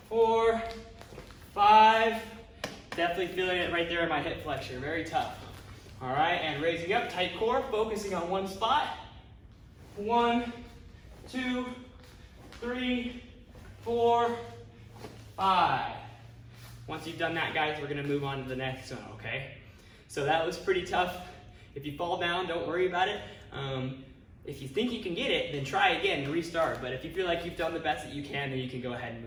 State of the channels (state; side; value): identical; both; correlation 1.00